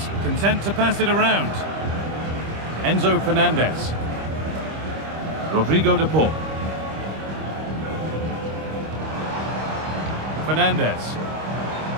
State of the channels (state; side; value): late; left; 25 ms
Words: content to pass it around. Enzo Fernandez. Rodrigo de Paul. Fernandez.